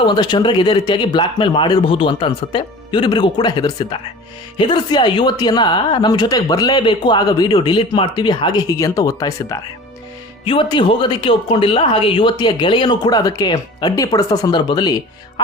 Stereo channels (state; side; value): normal; both; correlation 0.40